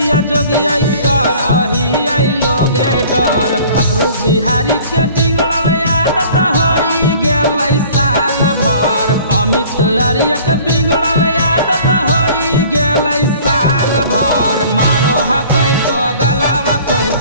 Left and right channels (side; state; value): both; inverted; correlation -0.49